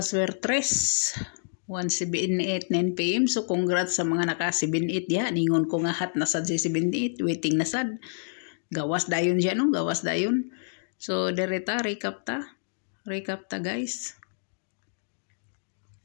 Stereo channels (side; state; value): right; silent; digital silence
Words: 1:78 9 PM. So congrats sa mga naka 78 ya. Ningon ko nga hat na sad si 78, waiting na sad. Gawas dayon siya no, gawas dayon. So dereta recap ta. Recap ta guys.